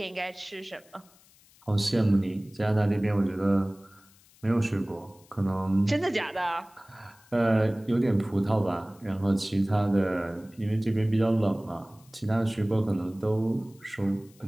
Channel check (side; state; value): left; noise; hiss, 28 dB below the sound